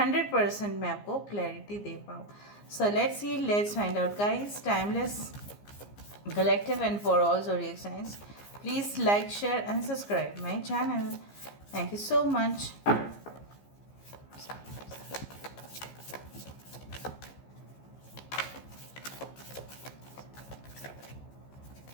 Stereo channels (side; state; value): right; late; 15 ms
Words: मैं आपको क्लैरिटी दे पाऊँ। सो let's see, let's find out guys. Timeless collective and for all zodiac signs, please like, share and subscribe my channel. Thank you so much.